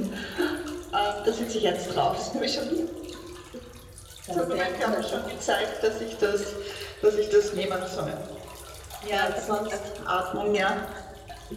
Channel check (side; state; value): both; identical; correlation 1.00